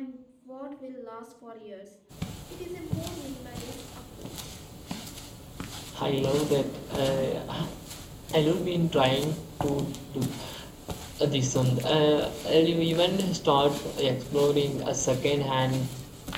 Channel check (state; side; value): identical; both; correlation 1.00